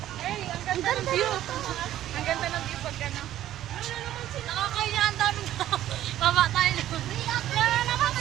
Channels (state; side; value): quieter; left; 12.8 dB